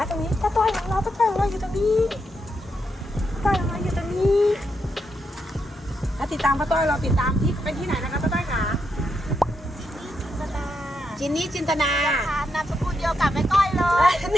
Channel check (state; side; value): normal; both; correlation 0.82